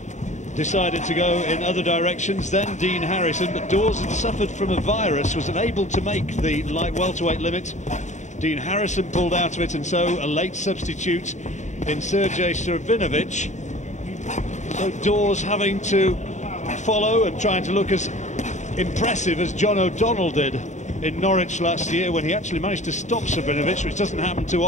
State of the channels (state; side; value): late; right; 0.34 ms